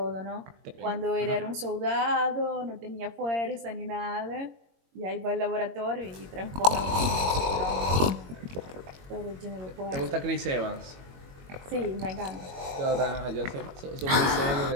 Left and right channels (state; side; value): late; left; 22 ms